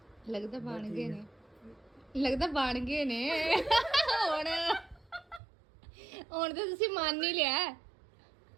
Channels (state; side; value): drops out; left; at 5.4 s